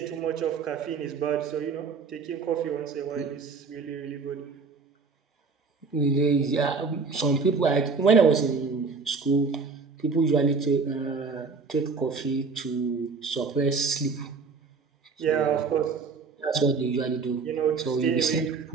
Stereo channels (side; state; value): left; quieter; 4.8 dB